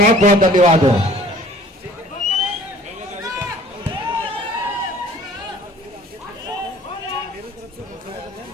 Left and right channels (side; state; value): both; normal; correlation 0.51